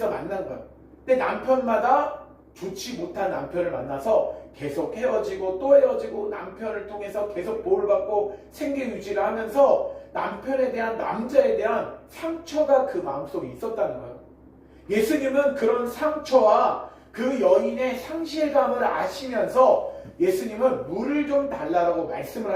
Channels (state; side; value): identical; both; correlation 1.00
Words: 만난 거예요. 근데 남편마다 좋지 못한 남편을 만나서 계속 헤어지고 또 헤어지고 남편을 통해서 계속 보호를 받고 생계 유지를 하면서 남편에 대한, 남자에 대한 상처가 그 마음속에 있었다는 거예요. 예수님은 그런 상처와 그 여인의 상실감을 아시면서 예수님은 물을 좀 달라고 말씀을